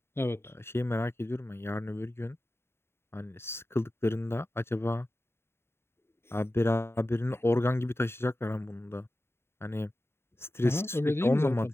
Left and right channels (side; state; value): right; late; 0.12 ms